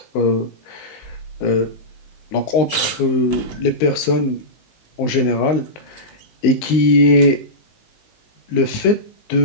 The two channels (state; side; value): late; right; 19 ms